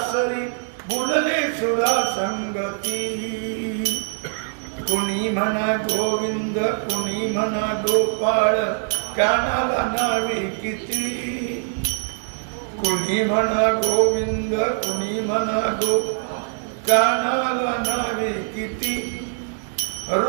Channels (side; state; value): left; silent; 64 dB below the other